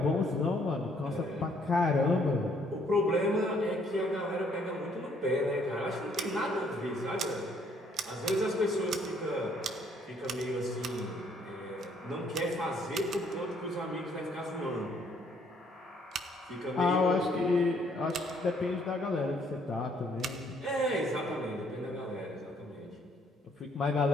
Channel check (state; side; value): normal; both; correlation 0.66